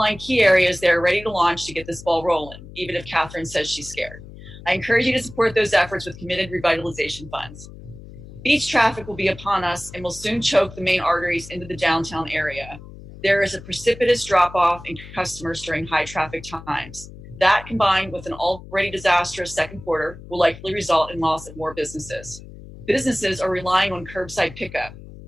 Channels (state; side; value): noise; left; hum, 16 dB below the sound